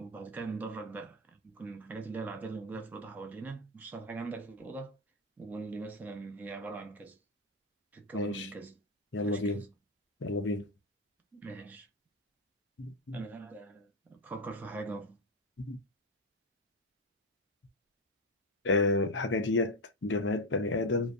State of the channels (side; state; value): both; normal; correlation 0.08